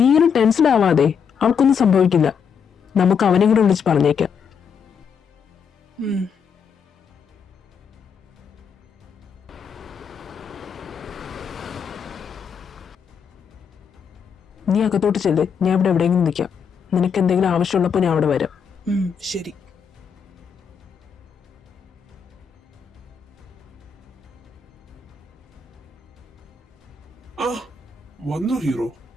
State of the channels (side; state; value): right; quieter; 6.5 dB